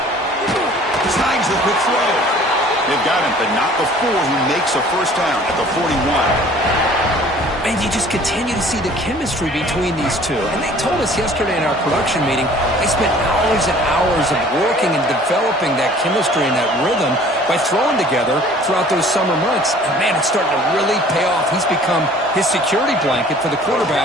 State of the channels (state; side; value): normal; both; correlation 0.51